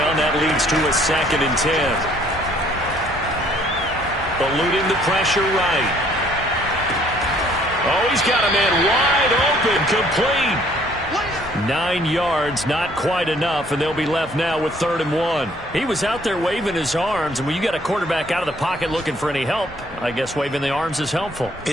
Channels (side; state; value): both; normal; correlation 0.61